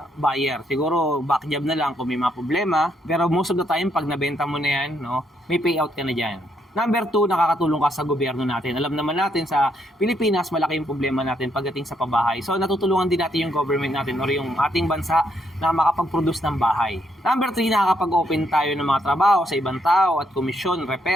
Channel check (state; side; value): normal; both; correlation 0.75